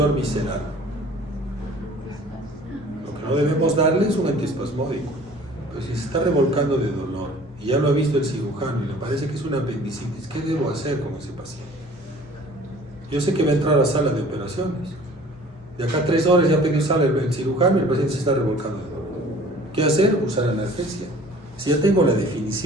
visceral, lo que no debemos darle es un antiespasmódico. Pero si se está revolcando de dolor y ya lo ha visto el cirujano y le parece que es una apendicitis, ¿qué debo hacer con ese paciente? Yo sé que va a entrar a la sala de operaciones. De acá a 3 horas ya tengo sala el cirujano y el paciente se está revolcando de dolor. ¿Qué hacer? Usar analgesia. Si ya tengo la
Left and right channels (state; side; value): normal; both; correlation 0.49